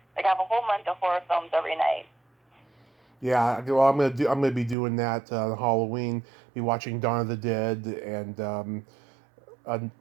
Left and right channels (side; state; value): left; drops out; at 4.8 s